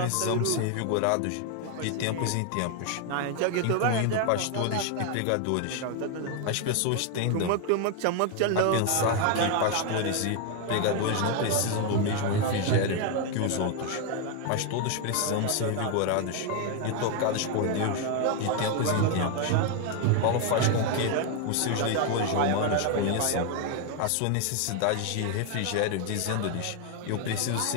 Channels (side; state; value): both; different; correlation 0.01